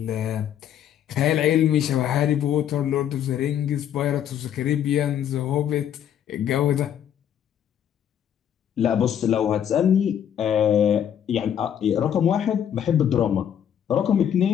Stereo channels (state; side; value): quieter; right; 9.6 dB